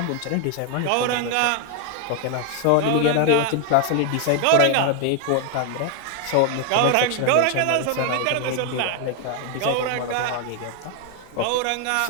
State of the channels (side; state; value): both; different; correlation 0.00